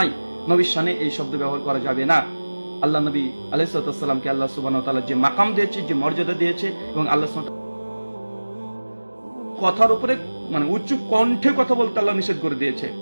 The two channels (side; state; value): both; inverted; correlation -1.00